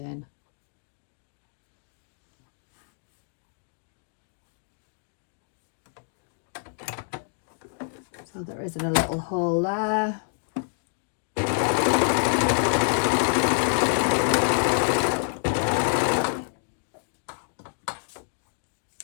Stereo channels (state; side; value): silent; right; digital silence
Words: So there isn't a little hole there.